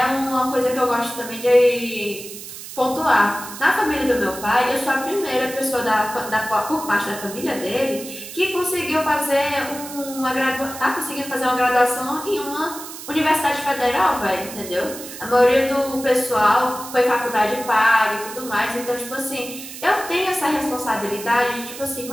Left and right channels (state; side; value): noise; right; hiss, 12 dB below the sound